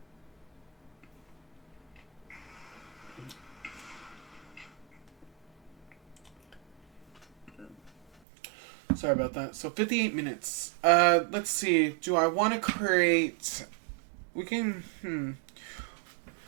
Sorry about that. So 58 minutes. Let's see. Do I want to create... We can...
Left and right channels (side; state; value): left; drops out; at 8.1 s